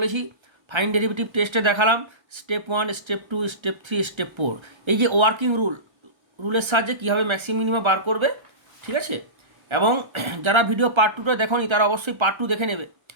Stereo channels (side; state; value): left; late; 1.3 ms